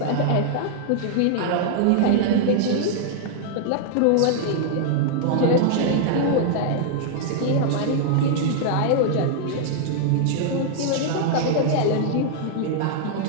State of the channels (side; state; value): both; different; correlation -0.01